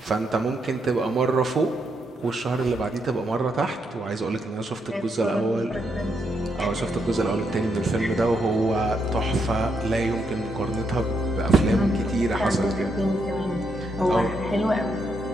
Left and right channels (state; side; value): normal; both; correlation 0.79